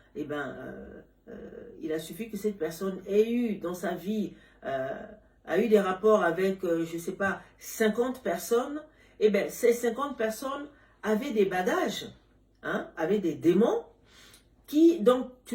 il a suffi que cette personne ait eu dans sa vie, a eu des rapports avec, je sais pas, 50 personnes, et bien ces 50 personnes avaient des bagages, hein, avaient des démons, donc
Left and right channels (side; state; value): both; identical; correlation 1.00